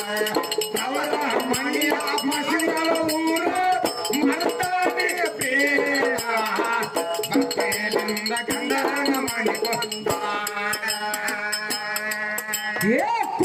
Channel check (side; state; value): both; identical; correlation 1.00